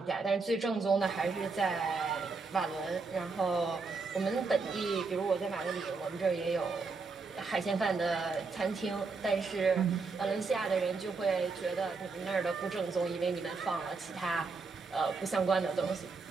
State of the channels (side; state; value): left; quieter; 4.3 dB